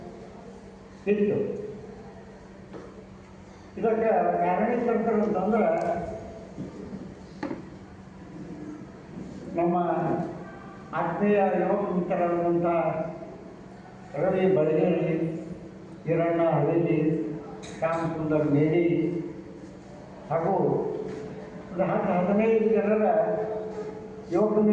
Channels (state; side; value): identical; both; correlation 1.00